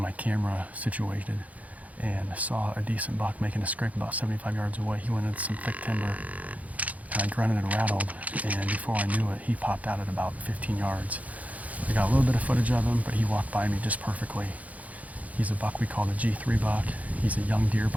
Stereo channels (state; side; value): late; left; 0.072 ms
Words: camera situated and saw a decent buck making a scrape about 75 yards away. He went into some thick timber, and I grunted and rattled, and before I knew it, he popped out at about 15 yards. I got a little bit of footage of him, but he walked by me just perfectly. He's a buck we call the G3 buck. He's a young deer,